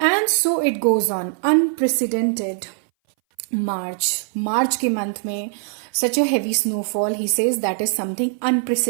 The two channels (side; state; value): left; silent; 61 dB below the other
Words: so it goes on. Unprecedented March के month में such a heavy snowfall. He says that is something